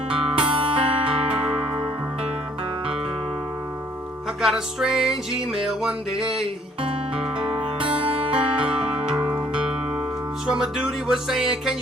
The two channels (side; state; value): both; normal; correlation 0.61